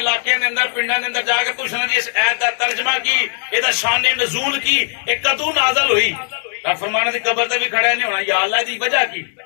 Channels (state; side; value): silent; right; 61 dB below the other